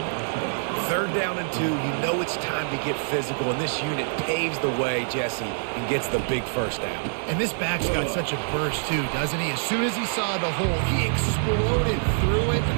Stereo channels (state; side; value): silent; left; digital silence